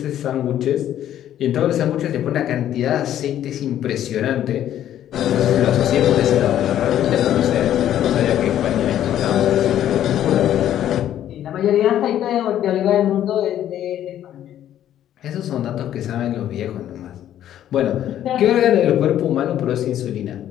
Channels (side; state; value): right; quieter; 11.4 dB